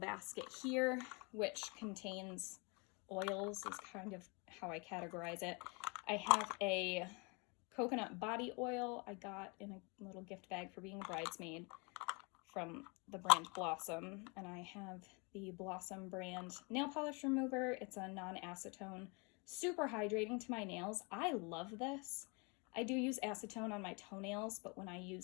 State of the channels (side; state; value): right; quieter; 31.1 dB